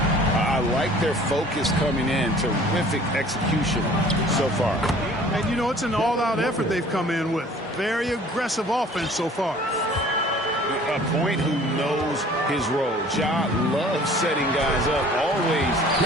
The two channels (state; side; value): normal; both; correlation 0.51